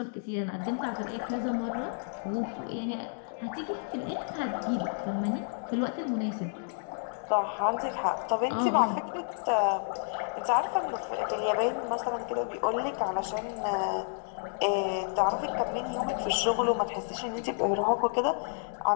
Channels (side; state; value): right; silent; 57 dB below the other